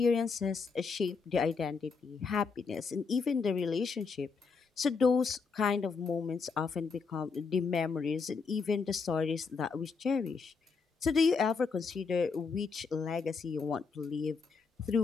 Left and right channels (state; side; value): quieter; right; 5.0 dB